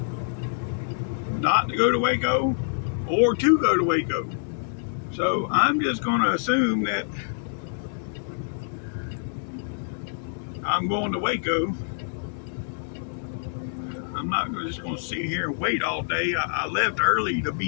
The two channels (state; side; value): silent; right; 61 dB below the other